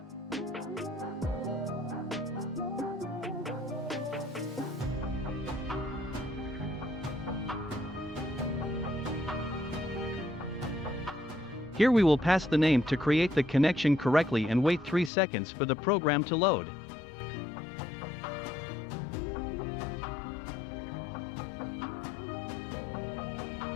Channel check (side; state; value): right; drops out; at 15.1 s